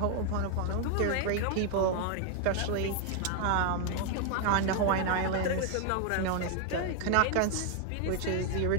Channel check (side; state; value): both; different; correlation 0.00